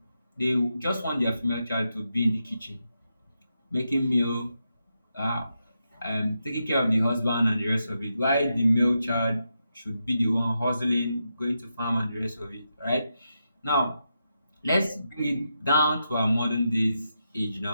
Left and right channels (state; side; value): inverted; both; correlation -0.85